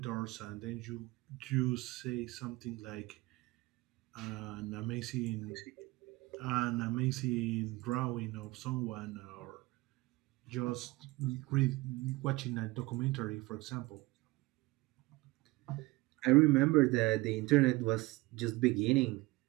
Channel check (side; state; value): left; quieter; 21.5 dB